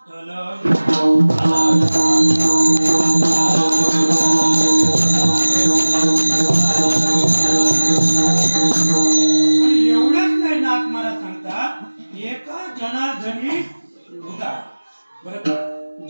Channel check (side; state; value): both; inverted; correlation -1.00